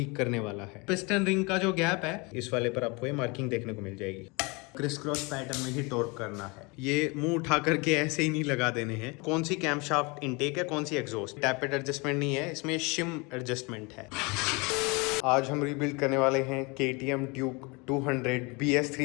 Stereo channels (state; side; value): quieter; right; 28.0 dB